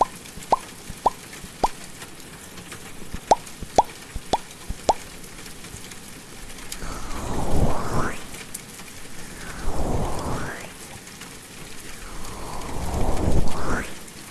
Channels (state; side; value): identical; both; correlation 1.00